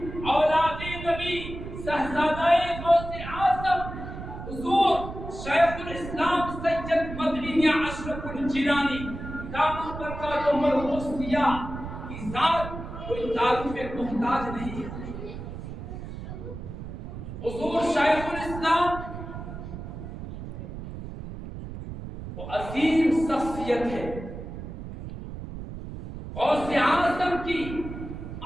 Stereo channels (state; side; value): noise; right; rumble, 9 dB below the sound